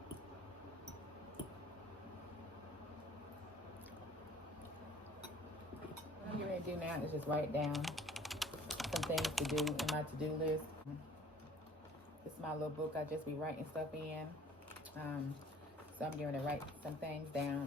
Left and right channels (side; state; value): both; normal; correlation 0.53